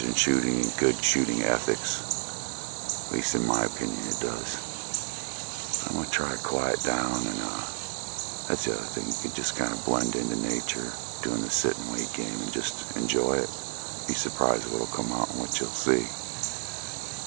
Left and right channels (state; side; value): silent; left; digital silence